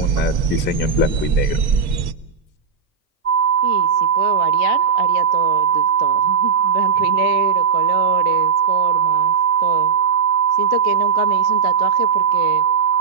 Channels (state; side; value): quieter; left; 6.2 dB